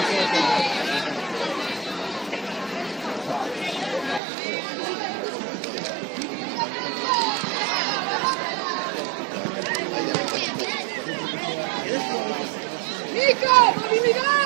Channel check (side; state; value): left; drops out; at 4.2 s